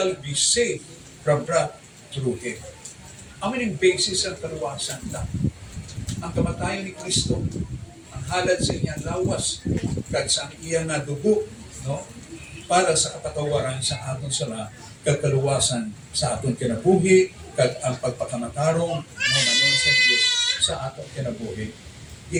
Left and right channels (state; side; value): identical; both; correlation 1.00